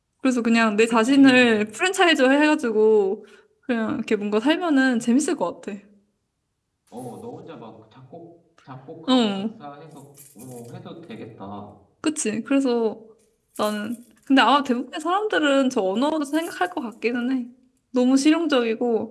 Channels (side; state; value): both; identical; correlation 1.00